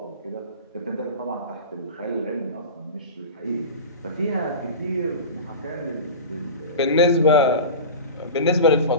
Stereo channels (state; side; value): inverted; both; correlation -0.30